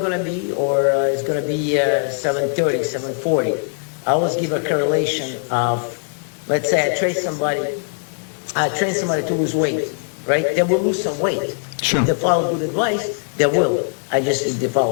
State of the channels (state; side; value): silent; right; 65 dB below the other